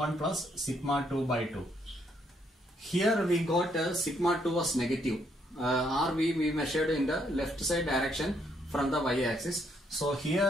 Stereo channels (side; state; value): both; normal; correlation 0.72